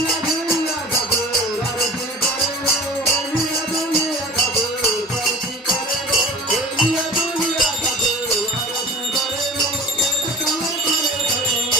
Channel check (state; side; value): normal; both; correlation 0.39